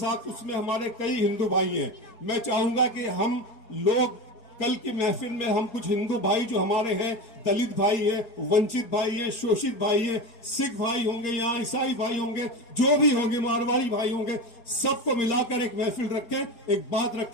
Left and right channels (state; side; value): late; right; 4.7 ms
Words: اس میں ہمارے کئی ہندو بھائی ہیں۔ میں چاہوں گا کہ ہم لوگ کل کی محفل میں ہم کچھ ہندو بھائی جو ہمارے ہیں، دلت بھائی ہیں، ونچت بھائی ہیں، شوشت بھائی ہیں، سکھ بھائی ہوں گے، یہاں عیسائی بھائی ہوں گے، جو بھی ہوں گے، مارواڑی بھائی ہوں گے، سب کو ملا کر ایک محفل رکھیں، ایک بات